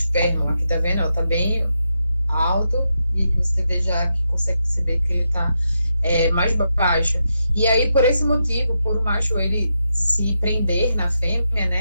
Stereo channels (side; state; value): both; inverted; correlation -0.85